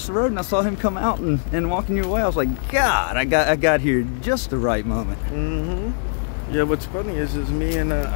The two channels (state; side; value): silent; right; digital silence